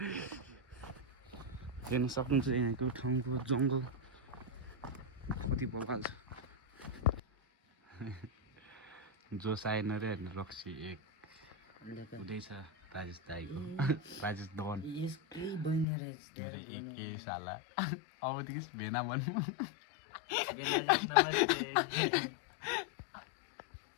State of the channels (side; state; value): right; drops out; at 15.9 s